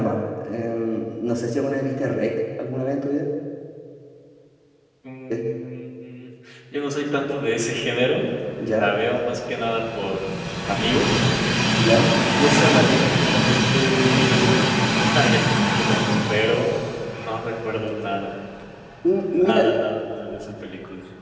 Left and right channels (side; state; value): both; identical; correlation 1.00